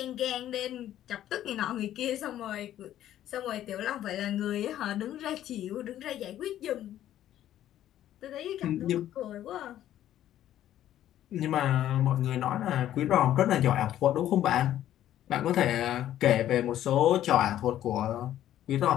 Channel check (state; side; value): quieter; right; 12.2 dB